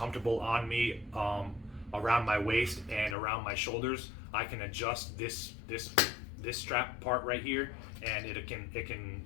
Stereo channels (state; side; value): drops out; right; at 3.2 s